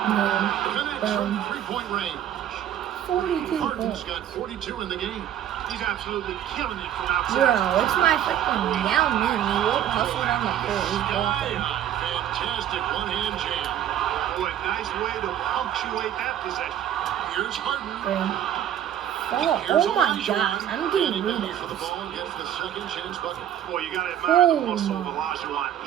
No. Connects from three-point range. 42 Harden's points. got 42 in the game. He's absolutely killing it from outside. Bro, it's my freaking Yao Ming. He won't hustle on the court. He's blocking. Fantastic one-hand jam. Boy, nice way to punctuate that possession. Here's Harden. Oh my gosh, I'm getting For the rebounds. ball, gets the second chance bucket. Boy, you got to admire the Oh, muscle of my. Olajuwon,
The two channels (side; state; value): left; quieter; 10.7 dB